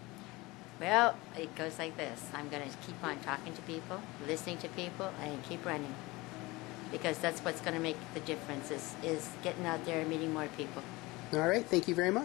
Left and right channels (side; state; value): right; quieter; 22.1 dB